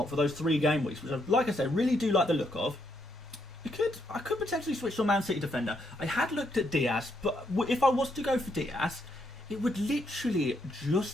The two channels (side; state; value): both; normal; correlation 0.76